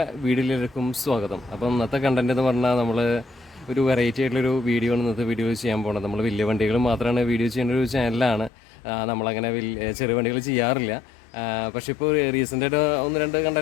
വീഡിയോയിലേക്കും സ്വാഗതം. അപ്പം ഇന്നത്തെ കണ്ടന്റ് എന്ന് പറഞ്ഞാൽ നമ്മൾ ഒരു വെറൈറ്റി ആയിട്ടുള്ളൊരു വീഡിയോ ആണ് ഇന്നത്തെ വീഡിയോ ചെയ്യാൻ പോകുന്നത്. നമ്മൾ വലിയ വണ്ടികൾ മാത്രമാണ് വീഡിയോ ചെയ്യുന്ന ഒരു ചാനലാണ്. നമ്മളങ്ങനെ ചെറിയ വണ്ടികൾ ചെയ്യാറില്ല. പക്ഷേ ഇപ്പോൾ റീസെൻ്റായിട്ട് ഒന്ന് രണ്ട്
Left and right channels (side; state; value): right; drops out; at 8.5 s